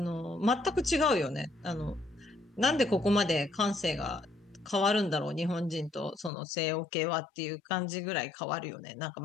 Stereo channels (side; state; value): right; drops out; at 6.3 s